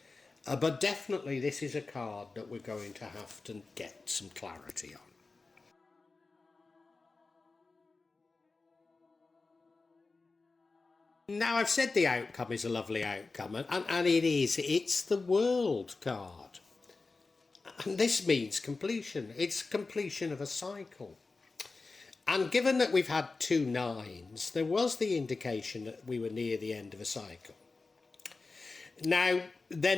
But definitely this is a card that we're going to have to get some clarity on. Now, I've said the outcome is a lovely outcome, and it is. It's the World card. And this means completion. It's completion of a cycle. And given that we've had 2 9s, there was the indication that we were near the end of a cycle. Now, they're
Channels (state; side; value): quieter; right; 3.9 dB